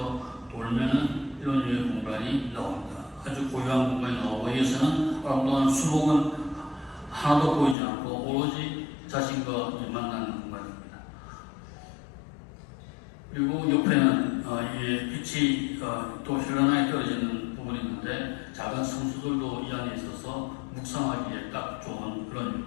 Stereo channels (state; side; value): drops out; right; at 7.8 s